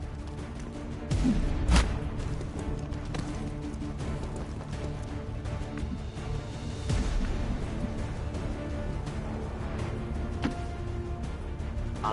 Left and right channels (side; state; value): both; identical; correlation 1.00